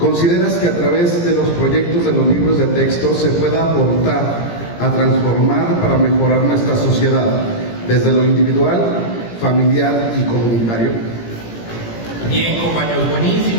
que a través de los proyectos de los libros de texto se pueda aportar a transformar para mejorar nuestra sociedad, desde lo individual, familiar y comunitario? Bien, compañeros,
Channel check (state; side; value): late; right; 17 ms